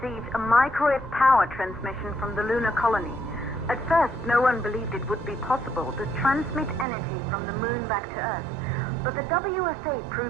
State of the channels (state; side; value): drops out; left; at 6.9 s